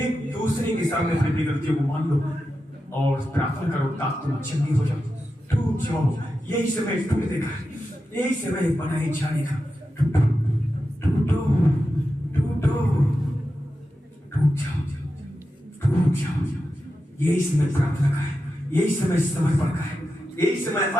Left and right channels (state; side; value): normal; both; correlation 0.90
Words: दूसरे के सामने अपनी गलतियों को मान लो और प्रार्थना करो ताकि तुम चंगी हो जाओ, टूट जाओ। यही समय टूटने का, यही समय बनाए जाने का। टूटो टूटो टूटो, टूट जाओ, टूट जाओ। यही समय प्रार्थना का है, यही समय समर्पण का है, यही समय